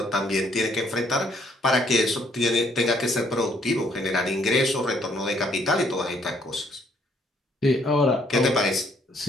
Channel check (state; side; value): normal; both; correlation 0.66